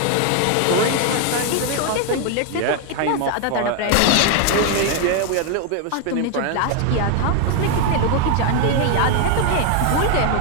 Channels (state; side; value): different; both; correlation 0.01